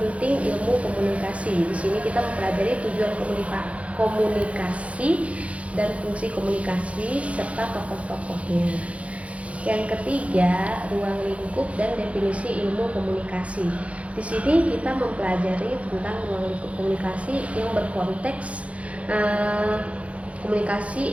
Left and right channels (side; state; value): left; late; 0.064 ms